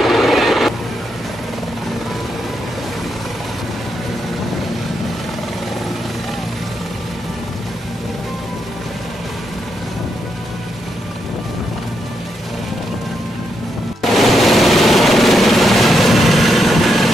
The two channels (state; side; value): normal; both; correlation 0.81